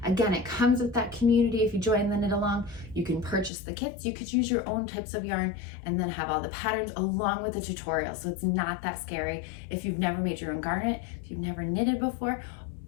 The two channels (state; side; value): drops out; right; at 3.5 s